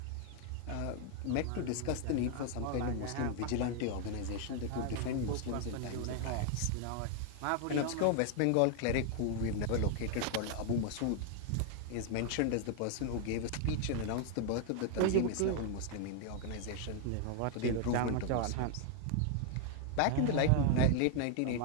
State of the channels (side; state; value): both; different; correlation 0.00